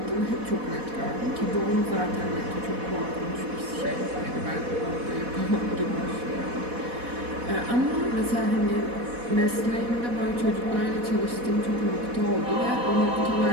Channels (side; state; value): left; late; 4.1 ms